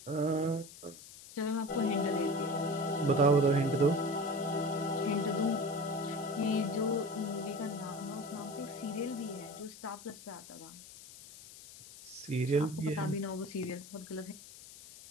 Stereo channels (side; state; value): left; noise; hiss, 17 dB below the sound